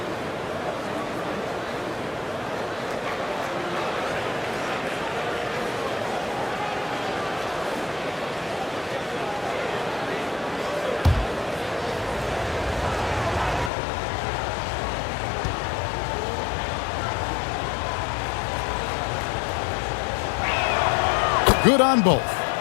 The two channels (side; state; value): right; drops out; at 13.7 s